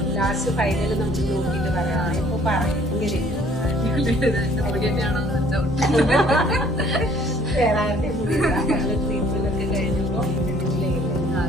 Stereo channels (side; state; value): both; normal; correlation 0.58